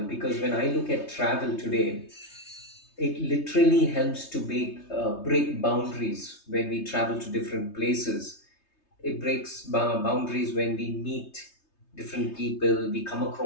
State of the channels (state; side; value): late; right; 3.3 ms